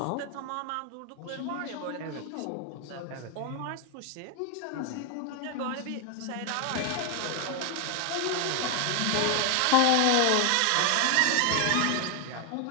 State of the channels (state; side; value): different; both; correlation 0.01